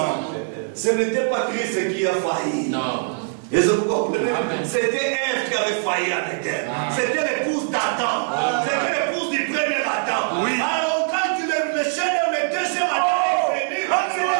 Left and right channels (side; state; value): left; silent; digital silence